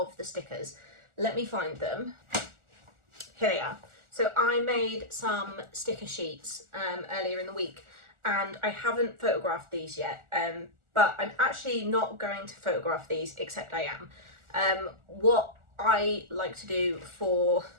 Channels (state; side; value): late; left; 1.4 ms